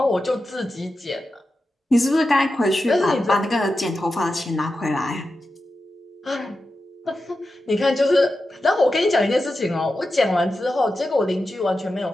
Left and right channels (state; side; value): normal; both; correlation 0.91